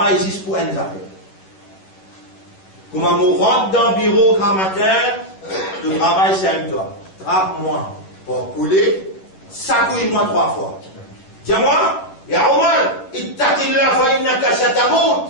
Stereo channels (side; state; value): right; late; 11 ms